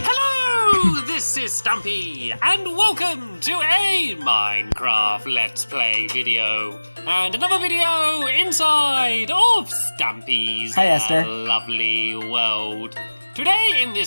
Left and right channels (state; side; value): inverted; both; correlation -1.00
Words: this is Stampy, and welcome to a Minecraft Let's Play video. And another video inside of Stampy's Hi, Esther. Lovely World. Today in